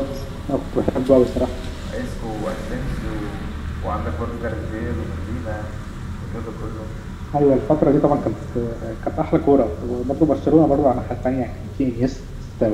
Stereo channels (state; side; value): identical; both; correlation 1.00